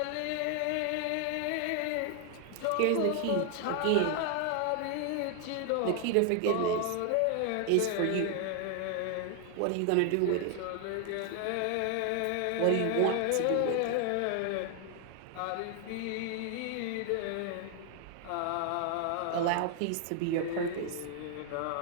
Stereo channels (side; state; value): both; different; correlation 0.00